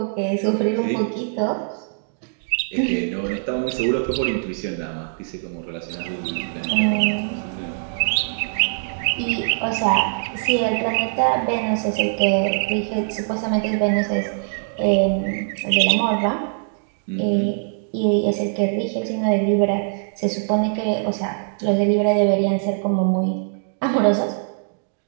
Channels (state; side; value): silent; left; digital silence